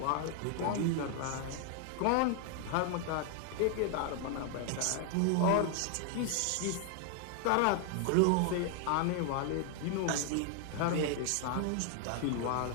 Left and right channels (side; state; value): both; different; correlation 0.00